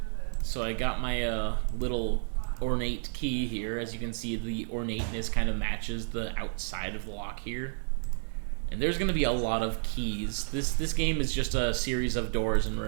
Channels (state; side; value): silent; left; digital silence